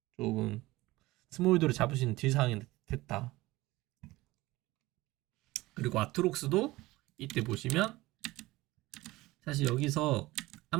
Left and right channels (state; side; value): quieter; left; 19.3 dB